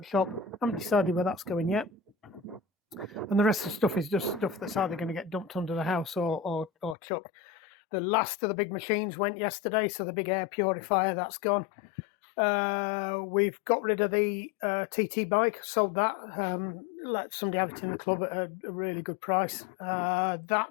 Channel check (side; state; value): right; drops out; at 7.0 s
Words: I haven't decided where that's going yet. And the rest of the stuff is just stuff that's either going to get dumped under the house or chucked. The last of the big machines went yesterday, so the big air purifier, that's gone. We've got rid of the TT bike, sold that, let somebody have it in the club at a really good price.